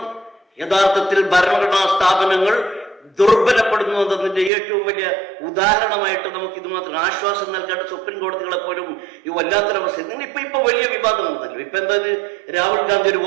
യഥാർത്ഥത്തിൽ ഭരണഘടനാ സ്ഥാപനങ്ങൾ ദുർബലപ്പെടുന്നു എന്നതിന്റെ ഏറ്റവും വലിയ ഉദാഹരണമായിട്ട് നമുക്ക് ഇത് മാത്രം ആശ്വാസം നൽകേണ്ട സുപ്രീം കോടതികളെ പോലും ഈ വല്ലാത്തൊരവസ്ഥ. ഇപ്പൊ വലിയ വിവാദം ഉണ്ടല്ലോ. ഇപ്പൊ എന്താ, രാഹുൽ ഗാന്ധി ഒരു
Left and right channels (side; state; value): left; drops out; at 4.5 s